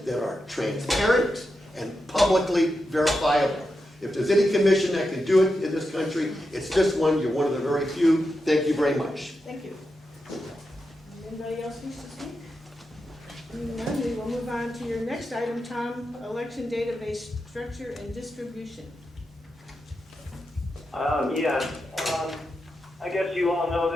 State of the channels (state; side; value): normal; both; correlation 0.88